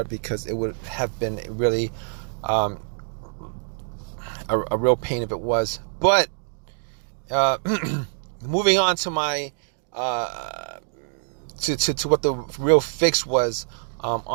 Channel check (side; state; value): left; silent; digital silence